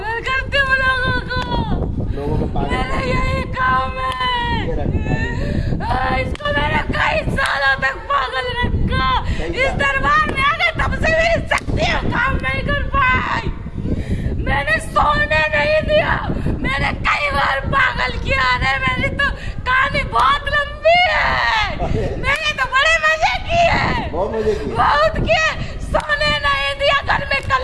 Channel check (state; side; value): identical; both; correlation 1.00